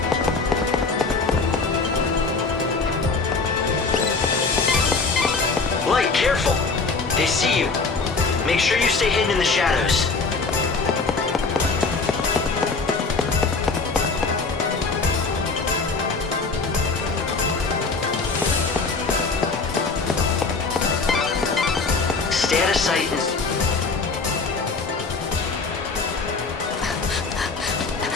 Light, careful! They see you. Make sure you stay hidden in the shadows. Stay out of sight and...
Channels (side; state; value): right; quieter; 4.2 dB